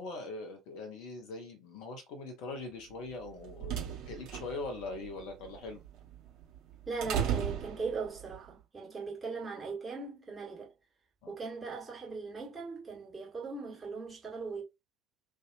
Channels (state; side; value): quieter; left; 3.9 dB